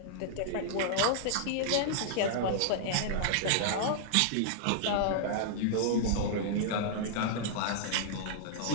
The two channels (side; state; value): both; different; correlation -0.01